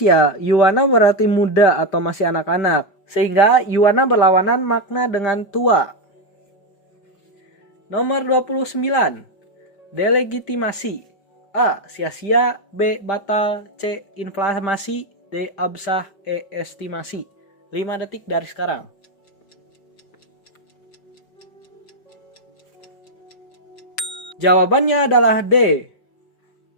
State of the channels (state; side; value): late; right; 5.0 ms